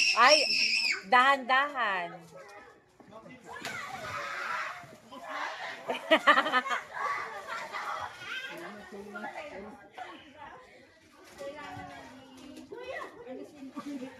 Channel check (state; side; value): identical; both; correlation 1.00